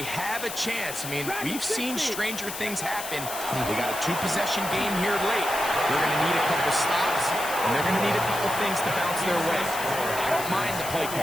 have a chance. I mean, we've seen stranger things happen. They got a 2-possession game here late. They're going to need a couple stops, and they're going to need a couple things to bounce their way. I don't mind the play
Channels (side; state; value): left; noise; hiss, 8 dB below the sound